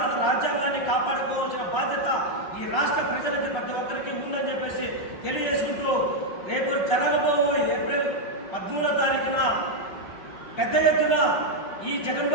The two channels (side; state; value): right; late; 5.5 ms